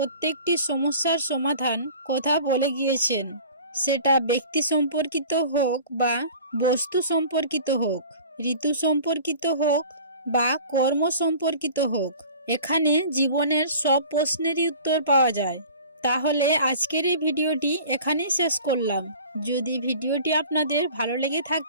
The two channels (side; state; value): both; inverted; correlation -0.43